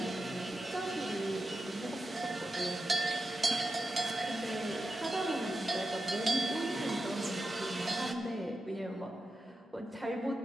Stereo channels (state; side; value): normal; both; correlation 0.90